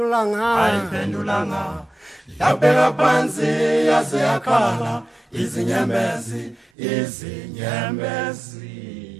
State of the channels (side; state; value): left; drops out; at 6.7 s